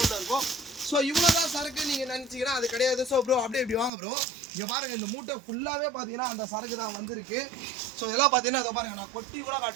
இருக்கும். ஸோ இவ்வளோ தான் சரக்கு நீங்கள் நினச்சிங்கன்னா அது கிடையாது. ஸோ ப்ரோ அப்படியே இப்படி வாங்க ப்ரோ, இங்கே பாருங்கள் இந்த மூட்டை ஃபுல்லாகவே பார்த்தீங்கன்னா அந்த சரக்கு தான் வந்திருக்கு. ஸோ இதெல்லாம் பார்த்தீங்கன்னா இதை பாருங்கள், நான் கொட்டி கூட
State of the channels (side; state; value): left; drops out; at 3.9 s